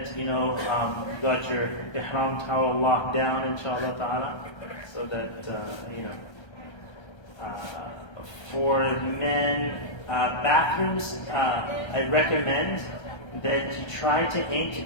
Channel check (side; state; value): right; late; 1.3 ms